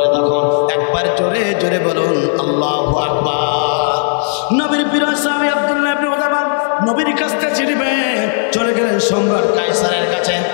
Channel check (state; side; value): silent; right; 61 dB below the other